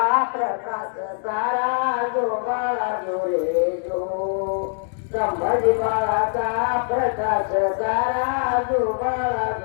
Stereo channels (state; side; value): silent; right; digital silence